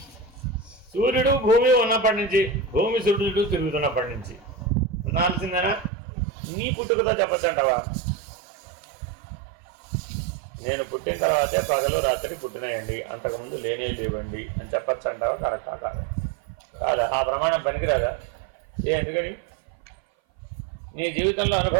సూర్యుడు భూమి ఉన్నప్పటి నుంచి, భూమి సూర్యుడు తిరుగుతున్నప్పటి నుంచి ఉండాల్సిందేనా? నీ పుట్టుకతో చెప్పచ్చు అంటావా? నేను పుట్టిన తర్వాతే పగలు రాత్రి పుట్టినాయండి, అంతకుముందు లేవండి అని చెప్పచ్చు అంటావా? కరెక్టా కాదా? కాదా? ఆ ప్రమాణం పనికిరాదా? ఎందుకని? నీ జీవితంలో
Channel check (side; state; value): left; drops out; at 5.9 s